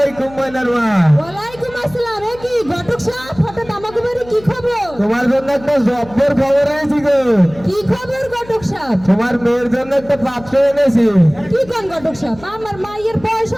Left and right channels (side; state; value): left; noise; hum, 20 dB below the sound